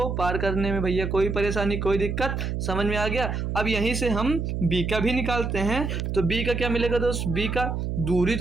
पार करने में। भैया कोई परेशानी कोई दिक्कत, समझ में आ गया। अब यहीं से हम बी का भी निकालते हैं, तो बी का क्या मिलेगा दोस्त? बी का दूरी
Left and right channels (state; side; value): noise; right; hum, 2 dB below the sound